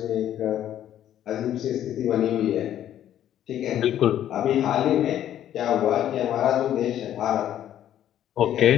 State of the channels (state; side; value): quieter; right; 11.3 dB